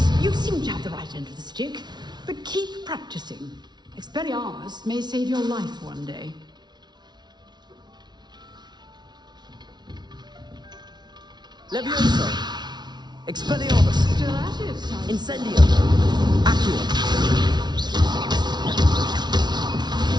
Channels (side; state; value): left; late; 0.20 ms